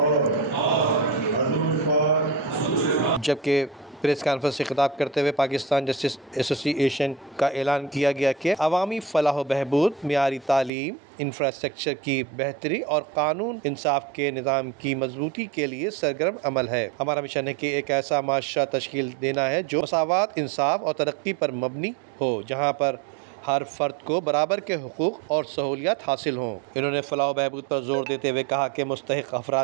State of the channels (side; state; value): left; drops out; at 10.7 s